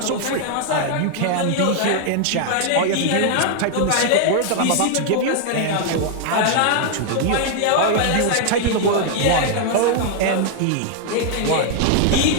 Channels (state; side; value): different; both; correlation 0.00